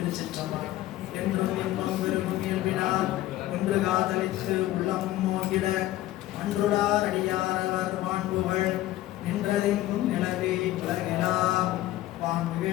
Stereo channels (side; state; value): right; quieter; 15.3 dB